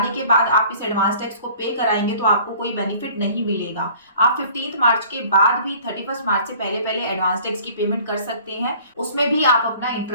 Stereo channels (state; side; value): inverted; both; correlation -0.50